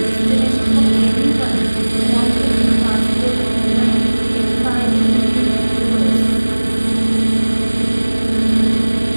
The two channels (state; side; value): inverted; both; correlation -1.00